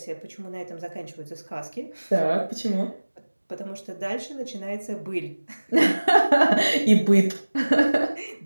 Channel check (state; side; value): inverted; both; correlation -1.00